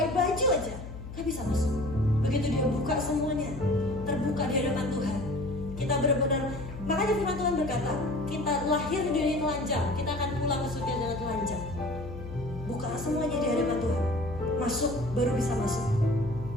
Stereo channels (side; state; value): left; noise; hum, 10 dB below the sound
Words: baju aja nggak bisa masuk. Begitu dia buka semuanya, terbuka di hadapan Tuhan. Kita benar-benar, makanya firman Tuhan berkata, kita lahir di dunia telanjang, kita akan pulang ke surga dengan telanjang. Buka semuanya di hadapan Tuhan, masuk, baru bisa masuk.